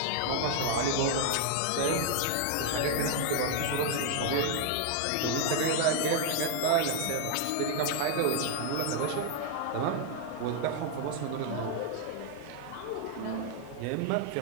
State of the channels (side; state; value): both; different; correlation 0.00